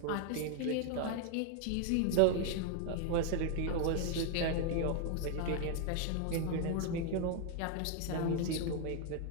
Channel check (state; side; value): different; both; correlation 0.01